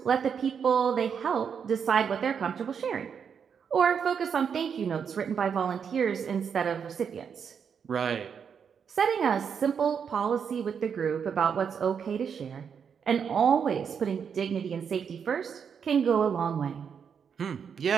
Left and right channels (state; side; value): quieter; left; 7.0 dB